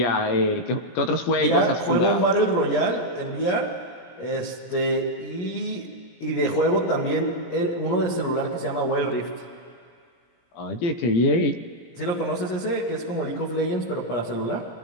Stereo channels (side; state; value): right; late; 17 ms